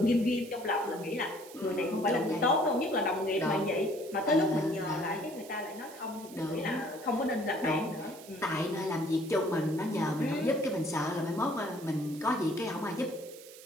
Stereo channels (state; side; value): noise; right; hiss, 18 dB below the sound